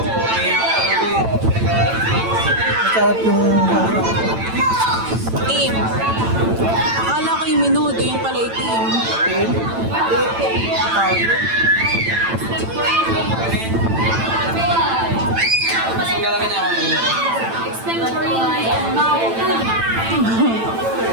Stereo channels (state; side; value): late; left; 9.0 ms